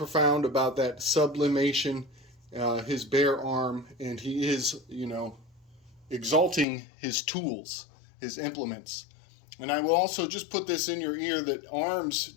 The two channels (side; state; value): right; drops out; at 6.7 s